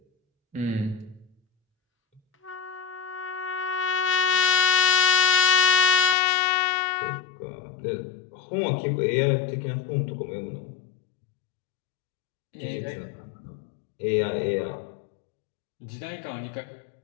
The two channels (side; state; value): right; drops out; at 6.2 s